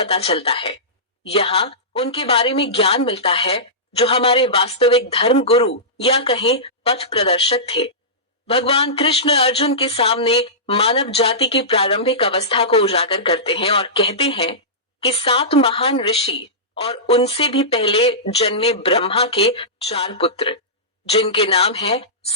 चलता है। यहाँ उनके बारे में ज्ञान मिलता है जो हमारे वास्तविक धर्म गुरु या कहें पथ प्रदर्शक थे। भगवान कृष्ण अर्जुन के सामने मानव जाति की प्रारंभिक अवस्था को उजागर करते हैं और कहते हैं कि 7 महान ऋषि और उनसे भी पहले जन्मे ब्रह्मा के 4 पुत्र, जिनके नाम हैं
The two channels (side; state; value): both; normal; correlation -0.18